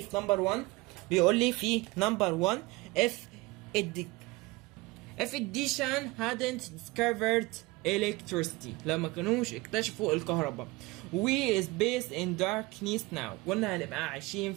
في نمبر 1 بيقول لي في نمبر 1 if addition hadn't discovered electricity لما كانوش اكتشفوا الكهرباء we is based in darkness now قلنا هنبقى عايشين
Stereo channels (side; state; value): left; quieter; 22.4 dB